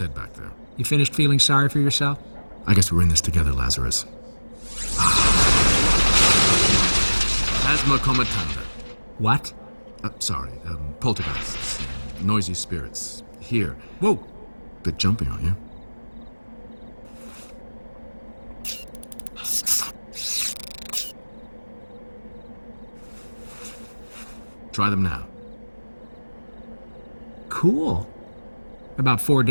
back there. You finished feeling sorry for yourself? I guess we're in this together, Lazarus. Asthma comatanda. What? Sorry, poltergeists. Noisy spirits. Here. Whoa. Bit jumpy, aren't you? Try them now. Cool. About 4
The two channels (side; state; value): both; inverted; correlation -1.00